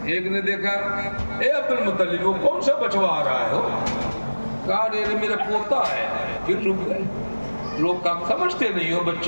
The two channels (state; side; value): inverted; both; correlation -1.00